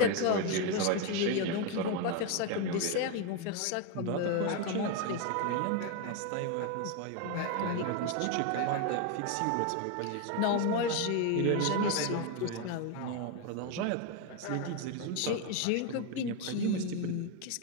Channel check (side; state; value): both; different; correlation 0.02